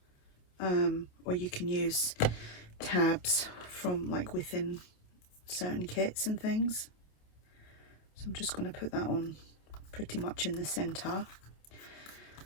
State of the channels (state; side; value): late; right; 27 ms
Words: or you can use tabs from like within certain kits and things. So I'm just going to put that on pretty much in the center.